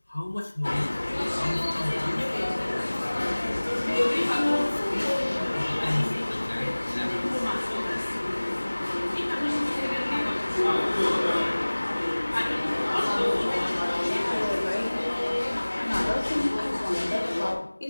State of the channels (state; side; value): inverted; both; correlation -1.00